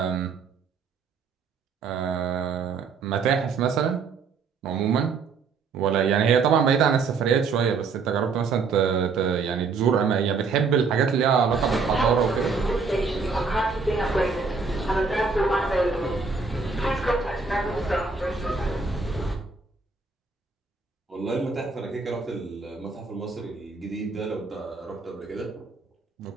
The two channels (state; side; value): quieter; left; 4.9 dB